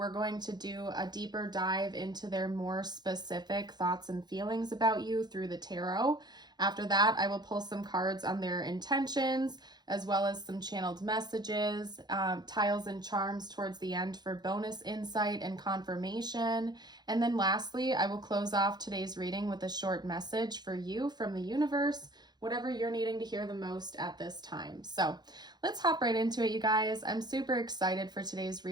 going to do a deeper dive into their more specific thoughts and feelings about you through the tarot. After that, I will pull some cards on their intentions, as well as some channeled messages, tiles and charms towards the end for bonus insight and confirmation. And then lastly, I will close off today's reading with a short message for you from the universe, whatever you're needing to hear the most at this time. So let's hop right into it, you guys. I'm super excited for today's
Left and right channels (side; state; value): left; late; 0.20 ms